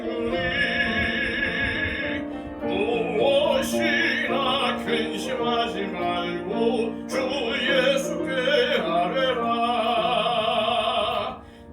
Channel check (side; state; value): both; identical; correlation 1.00